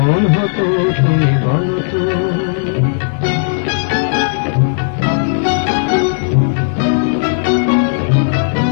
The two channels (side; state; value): right; silent; 70 dB below the other